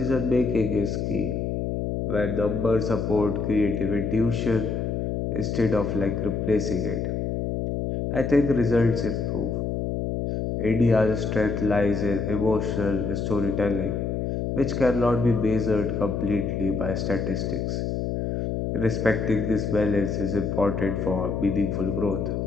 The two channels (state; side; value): noise; left; hum, 1 dB below the sound